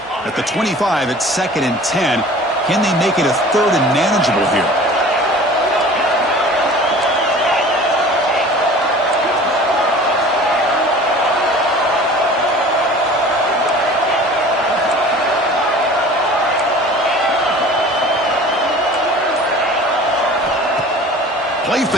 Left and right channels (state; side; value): normal; both; correlation 0.43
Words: At the 25, it's 2nd and 10. Can they make it a 3rd and manageable here? Play